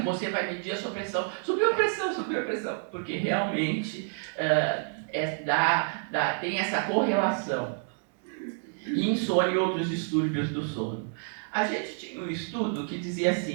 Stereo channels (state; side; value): silent; left; 59 dB below the other